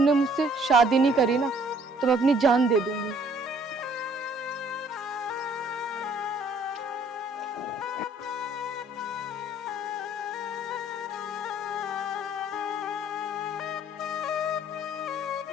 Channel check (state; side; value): normal; both; correlation 0.59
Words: मुझसे शादी नहीं करी ना तो मैं अपनी जान दे दूंगी।